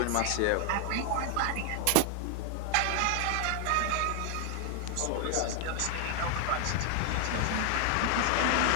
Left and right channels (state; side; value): different; both; correlation 0.00